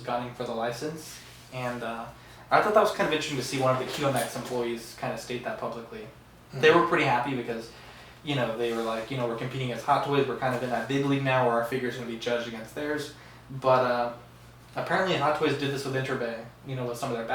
gunning for the license. And I thought that was kind of interesting to see one of the QMX employees kind of state that publicly. They were pretty happy because, they were like, we're competing against Hot Toys. We're kind of in that big league now where our figure's going to be judged against theirs. But apparently Hot Toys did this with Interbay, with some of their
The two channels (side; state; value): both; identical; correlation 1.00